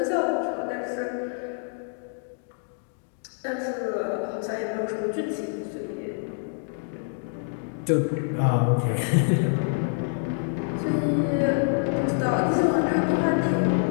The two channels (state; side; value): silent; right; digital silence